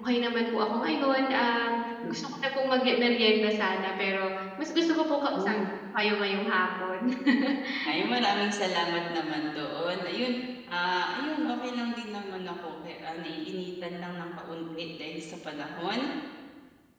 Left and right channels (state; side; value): identical; both; correlation 1.00